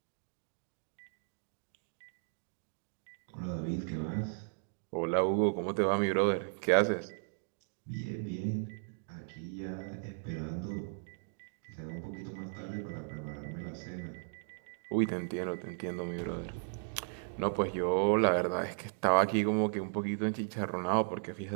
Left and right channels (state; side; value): silent; left; digital silence